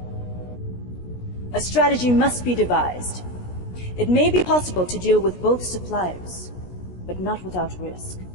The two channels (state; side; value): late; right; 16 ms